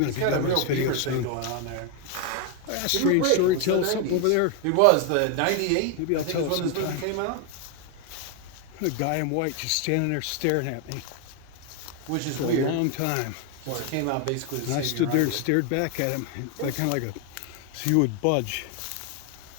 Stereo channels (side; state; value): both; different; correlation 0.01